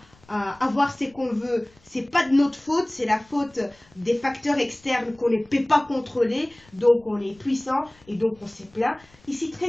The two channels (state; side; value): noise; left; rumble, 30 dB below the sound